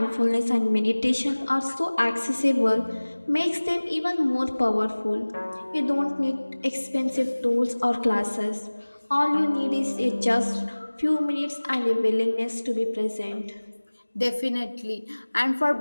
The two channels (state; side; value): inverted; both; correlation -1.00